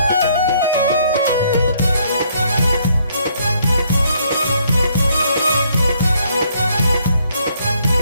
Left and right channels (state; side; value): inverted; both; correlation -0.68